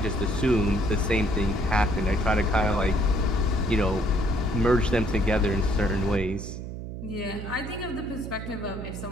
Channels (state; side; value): noise; right; hum, 8 dB below the sound